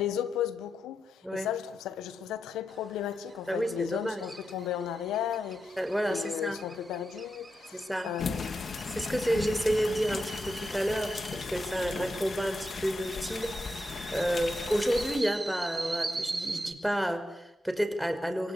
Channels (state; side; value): normal; both; correlation 0.86